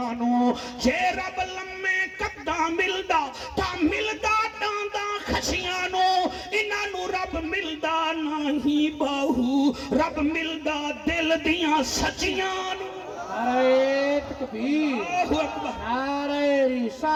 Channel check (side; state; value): both; identical; correlation 1.00